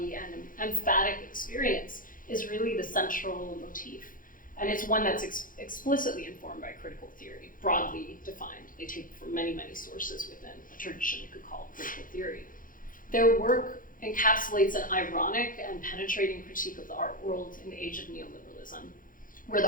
and emphatic experience is really the central motif. And it's one that's explicitly informed by critical theory, broadly defined. They take from many, many sources within a tradition you could call critical theory. Their work encapsulates an ironic and penetrating critique of the art world in the age of neoliberalism, where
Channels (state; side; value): late; right; 0.40 ms